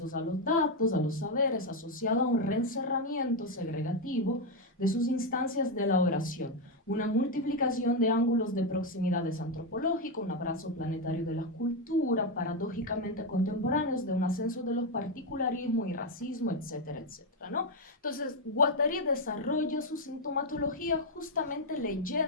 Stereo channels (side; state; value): both; normal; correlation 0.04